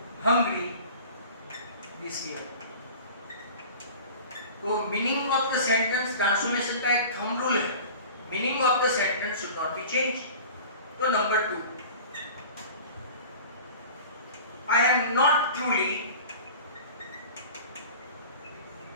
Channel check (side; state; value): both; inverted; correlation -0.39